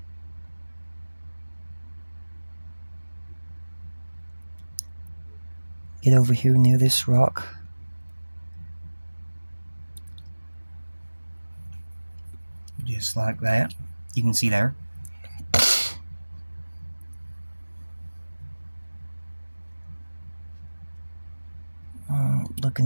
Get over here near this rock. Just like that. You can see there.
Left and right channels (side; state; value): both; inverted; correlation -1.00